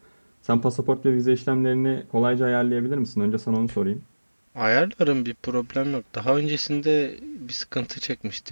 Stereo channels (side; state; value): both; inverted; correlation -1.00